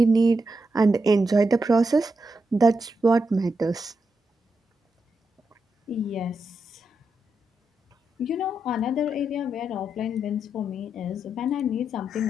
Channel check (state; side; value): normal; both; correlation 0.85